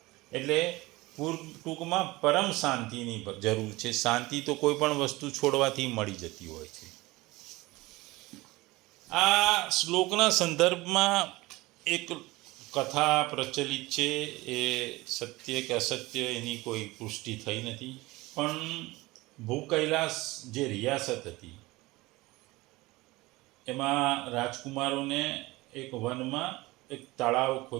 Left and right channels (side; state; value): left; quieter; 20.7 dB